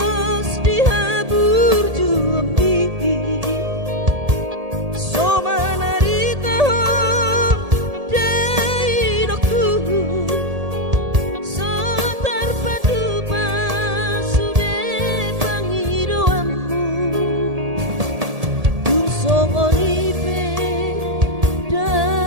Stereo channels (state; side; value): late; left; 1.8 ms